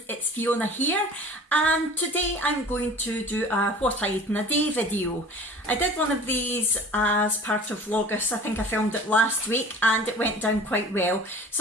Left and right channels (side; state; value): both; normal; correlation 0.43